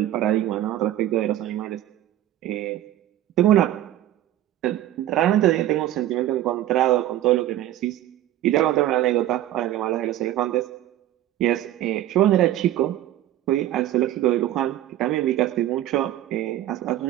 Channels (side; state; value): left; quieter; 13.3 dB